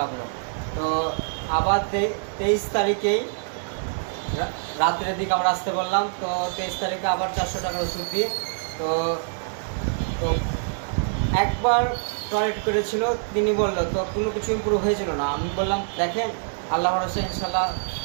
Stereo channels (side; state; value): left; silent; digital silence